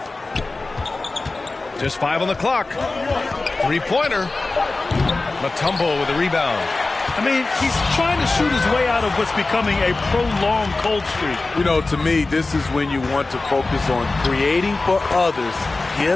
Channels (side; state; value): right; quieter; 3.4 dB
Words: Just 5 on the clock. Three-pointer. Mutombo with a rebound. I mean, he's trying to shoot his way out of what's becoming a prolonged cold streak. You know, to me, this is when you want to focus on creating for others.